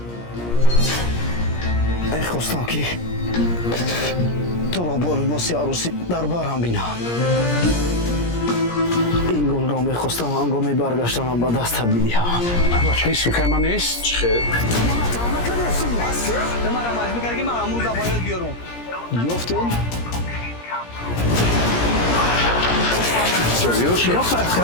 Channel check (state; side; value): late; right; 17 ms